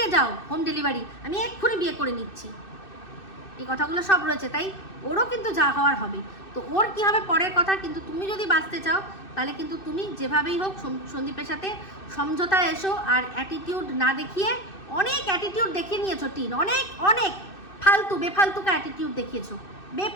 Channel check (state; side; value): late; right; 2.6 ms